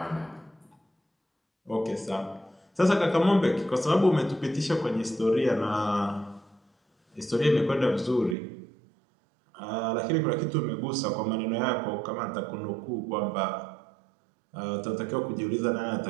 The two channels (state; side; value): drops out; left; at 8.3 s